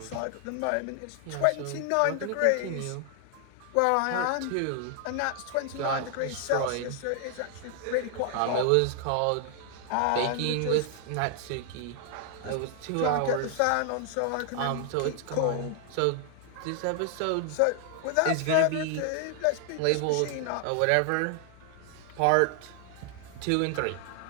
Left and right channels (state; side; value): different; both; correlation 0.00